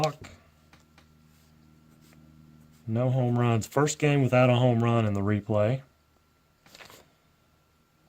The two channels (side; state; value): both; identical; correlation 1.00